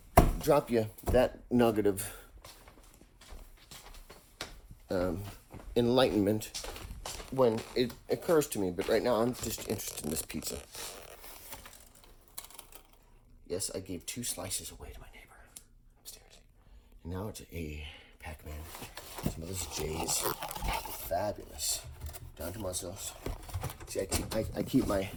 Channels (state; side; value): identical; both; correlation 1.00